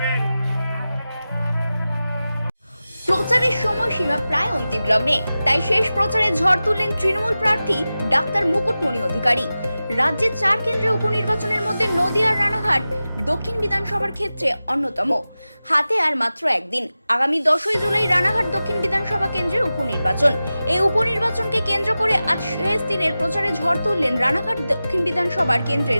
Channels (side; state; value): both; inverted; correlation -0.95